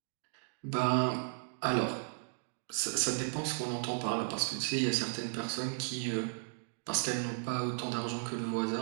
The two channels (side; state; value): left; silent; digital silence